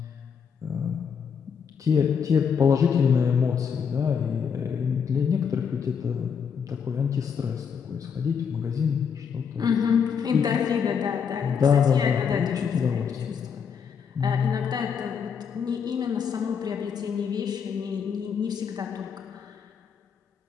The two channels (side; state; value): right; quieter; 6.8 dB